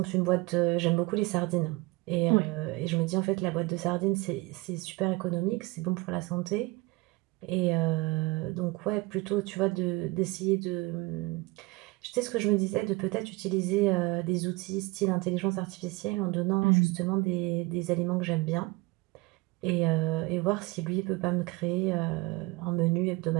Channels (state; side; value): quieter; left; 22.1 dB